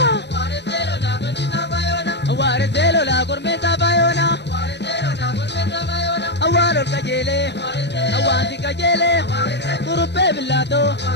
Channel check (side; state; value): right; late; 0.50 ms